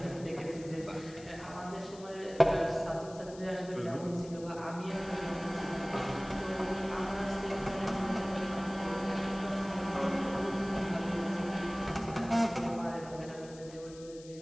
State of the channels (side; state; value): left; noise; hiss, 20 dB below the sound